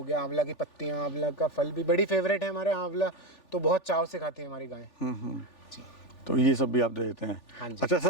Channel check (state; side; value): late; right; 3.4 ms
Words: गया, आंवला की पत्तियां, आंवला का फल भी बड़ी फेवरेट है हमारे। आंवला तो बहुत चाव से खाती है हमारी गाय। जी। तो ये सब भी आप दे देते हैं? हाँ जी। अच्छा